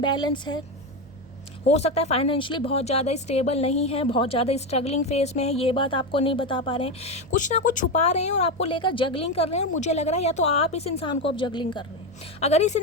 है, हो सकता है फाइनेंशियली बहुत ज़्यादा स्टेबल नहीं है, बहुत ज़्यादा स्ट्रगलिंग फेस में है, ये बात आपको नहीं बता पा रहे हैं, कुछ ना कुछ छुपा रहे हैं और आपको लेकर जगलिंग कर रहे हैं। और मुझे लग रहा है या तो आप इस इंसान को अब जगलिंग कर रहे हैं, अगर इस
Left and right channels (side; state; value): both; normal; correlation 0.13